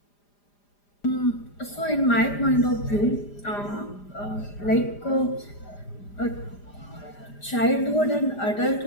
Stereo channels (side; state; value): right; late; 4.9 ms